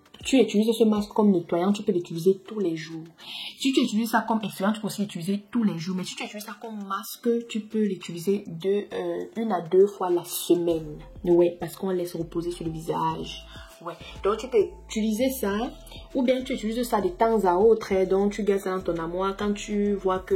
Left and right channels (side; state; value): both; identical; correlation 1.00